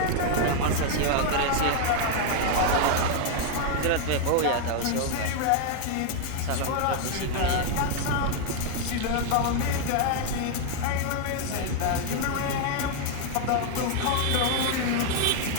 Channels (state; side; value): different; both; correlation 0.00